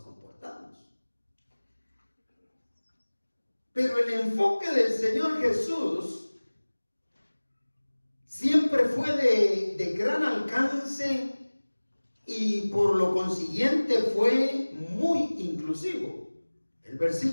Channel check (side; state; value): both; inverted; correlation -1.00